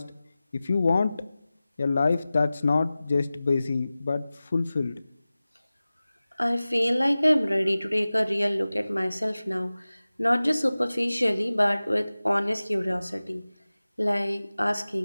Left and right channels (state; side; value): inverted; both; correlation -0.97